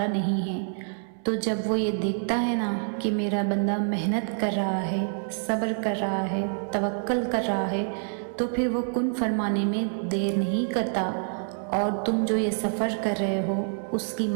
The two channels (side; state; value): left; silent; 60 dB below the other